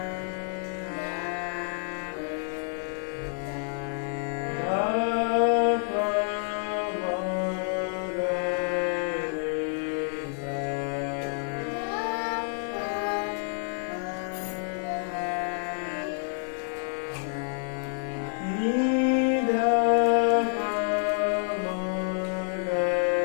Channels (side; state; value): right; silent; 59 dB below the other